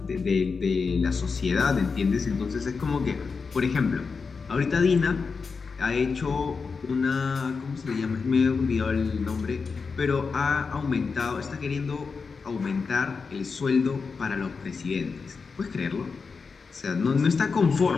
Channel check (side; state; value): right; quieter; 5.0 dB